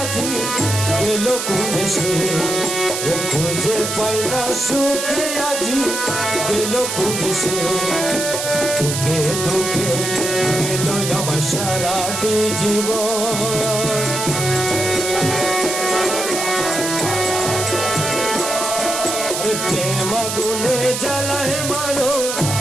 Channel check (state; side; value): noise; right; hiss, 3 dB below the sound